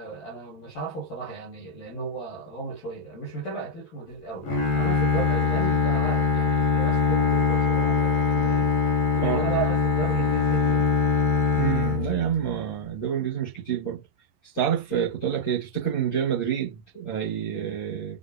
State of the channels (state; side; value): late; right; 11 ms